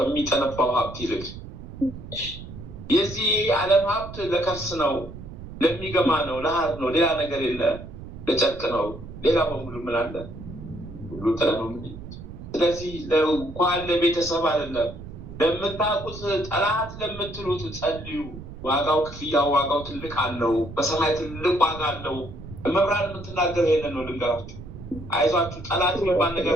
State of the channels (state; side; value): noise; right; rumble, 13 dB below the sound